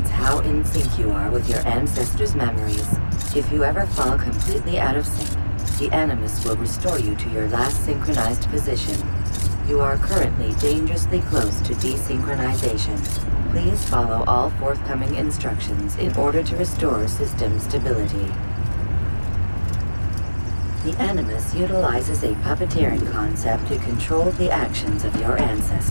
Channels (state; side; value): inverted; both; correlation -1.00